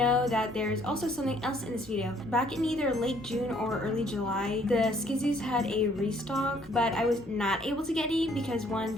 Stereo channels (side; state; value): both; normal; correlation 0.63